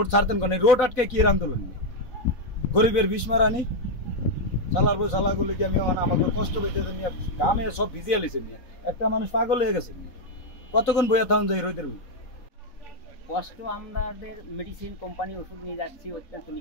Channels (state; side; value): late; right; 3.9 ms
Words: ছাড়তেন কোন, রোড আটকে কি এর আন্দোলন, গরিবের বিষ মারানি চালার বই চালাগুলো কি আমি আমাকে কষ্ট পেতে নিয়ে গামে সব ভিজিয়ে লিছে নিয়ে একটা মানুষ পাগল হয়ে গেছে নিয়ে কতক্ষণ বইয়া থাকুন যাই রোদের কষ্ট। আমাদের মেডিসিন কোম্পানি ওষুধ নিয়ে যাচ্ছি, অত্যন্ত